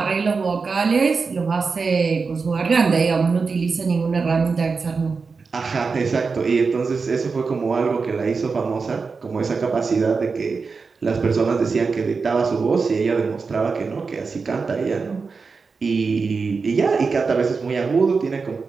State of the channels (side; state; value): left; quieter; 4.7 dB